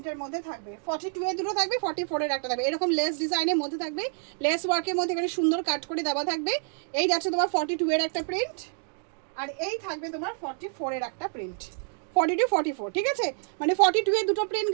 মধ্যে থাকবে, 42 এর দুটো থাকবে, 44 এর একটা থাকবে। এরকম লেস ডিজাইনের মধ্যে থাকবে, লেস ওয়ার্কের মধ্যে এখানে সুন্দর কাট করে দেওয়া থাকবে। এই যাচ্ছে তোমার 42 এর একটা প্রিন্ট, আর এই থাকবে তোমার 44 এর একটা প্রিন্ট। 42, 44। ঠিক আছে, মানে 42 এর দুটো প্রিন্ট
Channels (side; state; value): left; silent; 59 dB below the other